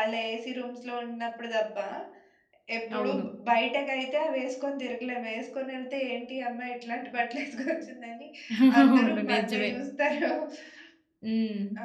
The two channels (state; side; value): identical; both; correlation 1.00